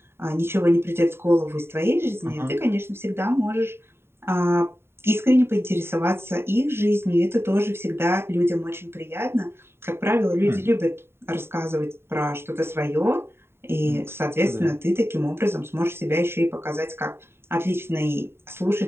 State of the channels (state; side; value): late; left; 0.11 ms